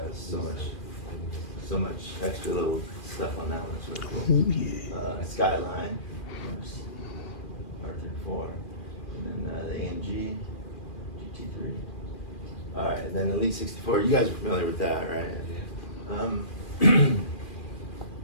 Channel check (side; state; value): right; late; 2.4 ms